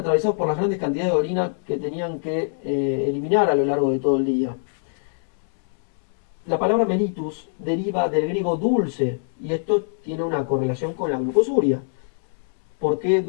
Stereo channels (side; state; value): right; silent; digital silence